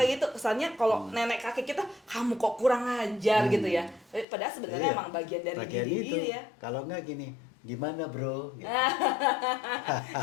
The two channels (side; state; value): right; drops out; at 4.2 s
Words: gitu. Kesannya kalau nenek kakek kita, kamu kok kurang ajar gitu ya. Padahal sebenarnya emang bagian dari diri itu. ya. Kalau enggak gini, gimana bro? Gitu.